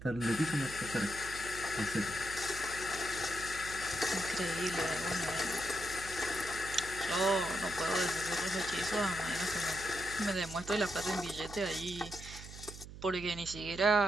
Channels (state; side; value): noise; right; hum, 13 dB below the sound